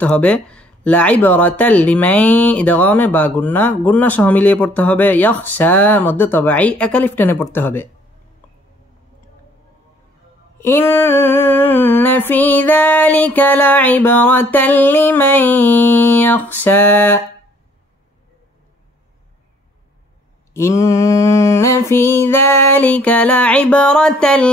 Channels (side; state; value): both; normal; correlation 0.61